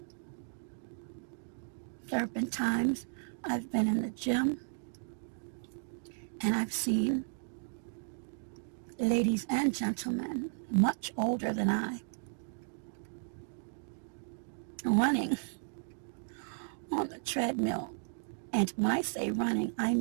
There have been times I've been in the gym and I've seen ladies and gentlemen much older than I running on the treadmill. And when I say running, I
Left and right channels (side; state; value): left; silent; digital silence